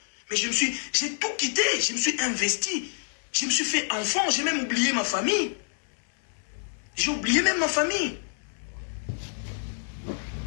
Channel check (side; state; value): right; silent; 60 dB below the other